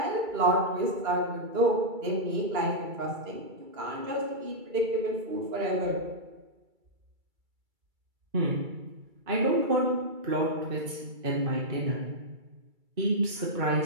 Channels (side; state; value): left; late; 2.3 ms